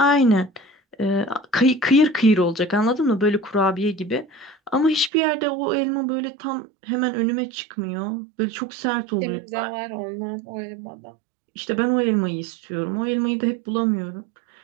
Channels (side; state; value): left; drops out; at 5.1 s